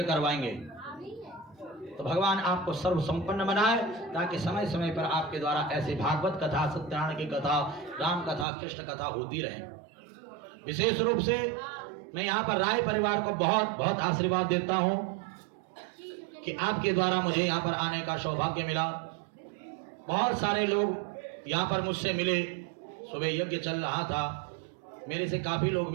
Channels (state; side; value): drops out; left; at 8.5 s